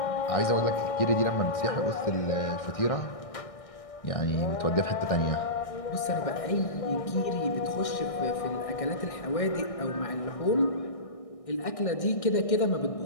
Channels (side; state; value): right; late; 1.6 ms